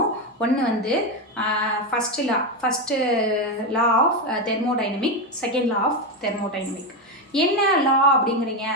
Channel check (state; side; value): normal; both; correlation 0.11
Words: ஒன்று வந்து first law of thermodynamic, second law of thermodynamic. என்ன லா அப்படிங்கிறீங்க?